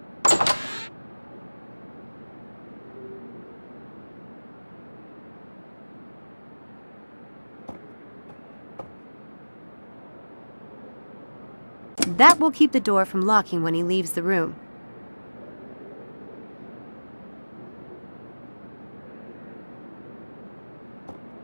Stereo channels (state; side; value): inverted; both; correlation -1.00